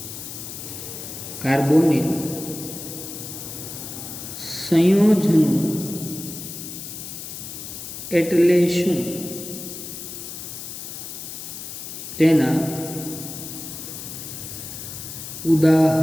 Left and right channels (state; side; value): noise; left; hiss, 9 dB below the sound